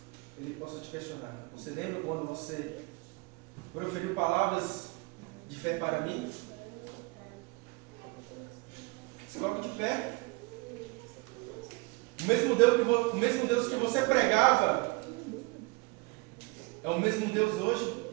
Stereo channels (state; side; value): quieter; left; 27.6 dB